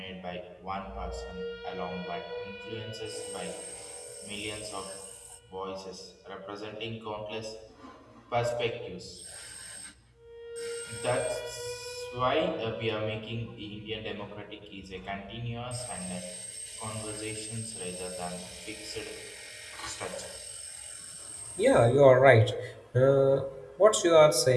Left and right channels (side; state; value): both; identical; correlation 1.00